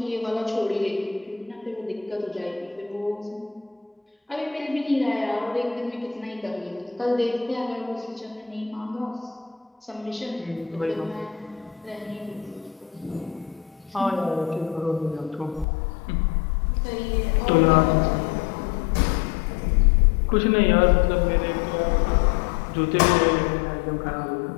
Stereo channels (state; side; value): drops out; right; at 15.7 s